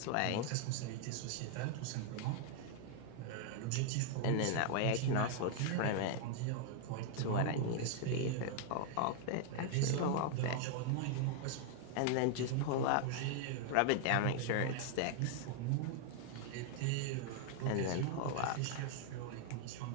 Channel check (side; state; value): both; different; correlation 0.00